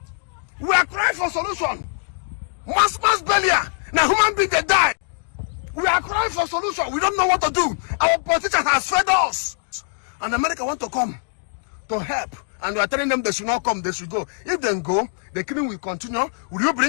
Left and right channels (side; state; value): right; silent; digital silence